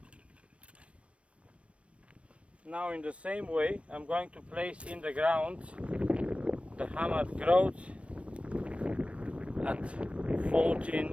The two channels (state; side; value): late; left; 0.062 ms